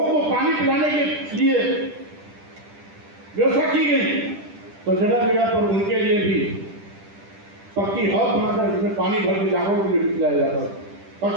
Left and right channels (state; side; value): late; left; 10 ms